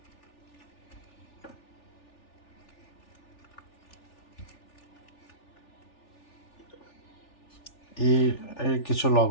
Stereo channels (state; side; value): late; right; 3.4 ms